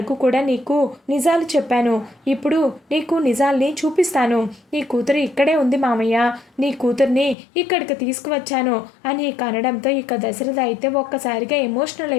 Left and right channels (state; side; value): drops out; right; at 7.4 s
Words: కూడా నీకు నిజాలు చెప్పాను, ఇప్పుడు నీకు నిజాల్ని చూపిస్తాను, నీ కూతురు ఇక్కడే ఉంది మామయ్య, నీ కూతుర్ని ఇక్కడికి తీసుకువచ్చాను అని ఇక అనడంతో ఇక దశరథ అయితే ఒక్కసారిగా ఎమోషనల్